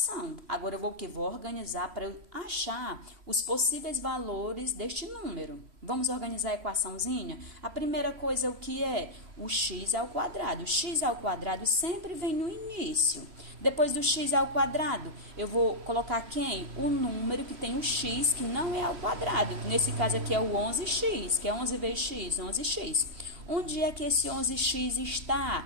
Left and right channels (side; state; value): left; late; 3.1 ms